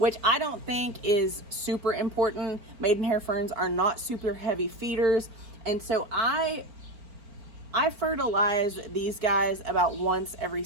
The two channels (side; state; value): left; late; 4.4 ms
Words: I don't think is super important. Maidenhair ferns are not super heavy feeders, and so I fertilize these guys about once every